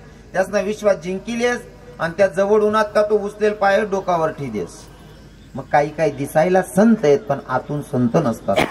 त्यासना विश्वास जिंकिलेस आणि त्या जवळ उन्हात का तो उचलेल पाय डोकावर ठेदेस. मग काही दिसायला संत आहेत पण आतून संत नसतात,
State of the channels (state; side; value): identical; both; correlation 1.00